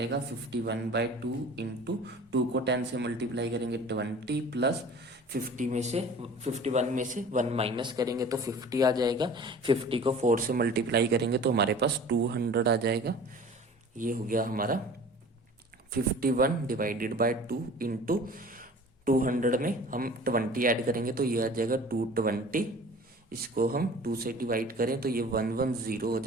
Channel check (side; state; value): both; normal; correlation 0.43